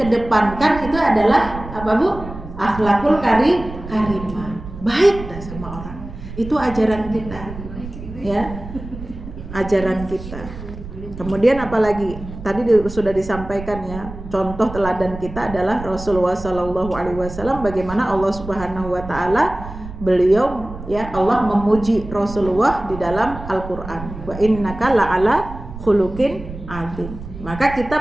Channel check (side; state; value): right; noise; rumble, 12 dB below the sound